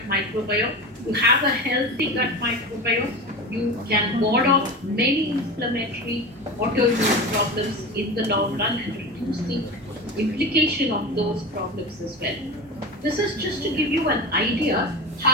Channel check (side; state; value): both; normal; correlation 0.27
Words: microbiome. You have a healthy gut microbiome, you can ward off many inflammatory autoimmune problems in the long run and reduce the implication of those problems as well. This is just to give you an idea